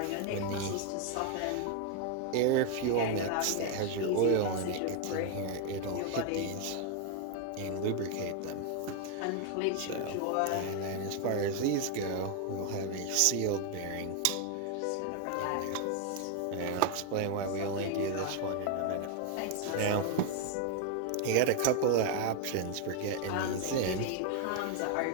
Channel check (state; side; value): different; both; correlation 0.01